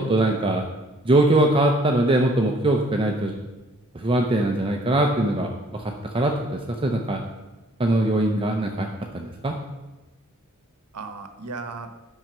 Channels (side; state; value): both; normal; correlation 0.61